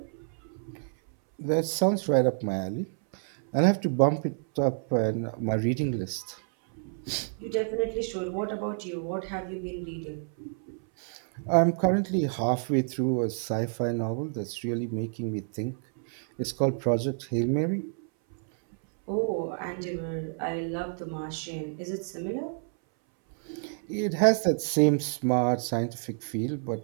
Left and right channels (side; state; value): left; silent; 59 dB below the other